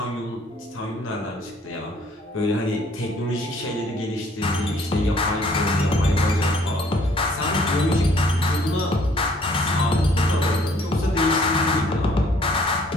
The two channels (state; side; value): normal; both; correlation 0.60